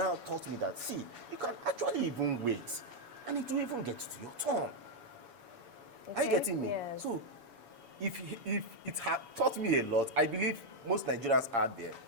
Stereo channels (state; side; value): late; left; 7.1 ms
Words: taught me that, see, you can actually even wait, and it will even get to your turn. Are you Okay, getting me? yes. So, if it had taught me a lot, I believe most Nigerians are there.